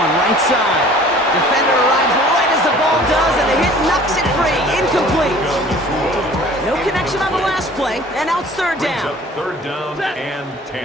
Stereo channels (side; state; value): both; normal; correlation 0.49